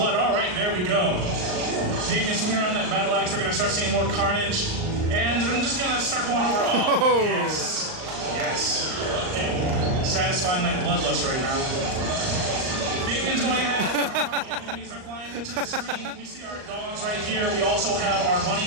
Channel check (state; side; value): late; left; 38 ms